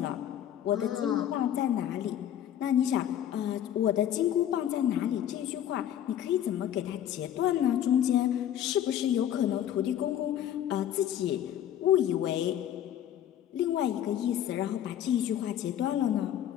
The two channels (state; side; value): quieter; right; 10.8 dB